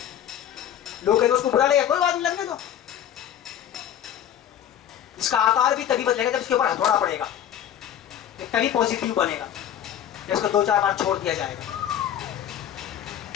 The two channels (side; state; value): right; quieter; 10.3 dB